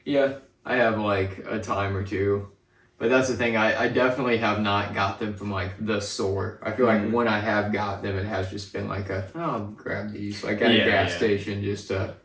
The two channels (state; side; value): identical; both; correlation 1.00